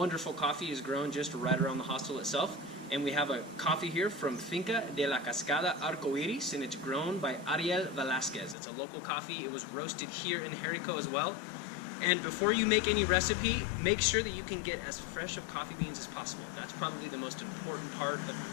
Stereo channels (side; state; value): right; drops out; at 8.6 s